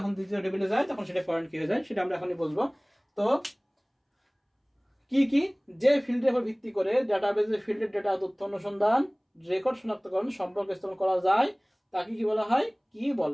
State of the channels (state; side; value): identical; both; correlation 1.00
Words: দ্বিতীয় টেবিলে যায় তখন সেটা ফরেন কি হয়ে যায়, সেটা আমরা এখনই বলবো। তো কি যে ফিল্ডের উপর ভিত্তি করে ডাটাবেজের ফিল্ডের ডেটা তথ্য অনুসন্ধান রেকর্ড শনাক্তকরণ সম্পর্ক স্থাপন করা যায় তাকে কি বলা হয়, কি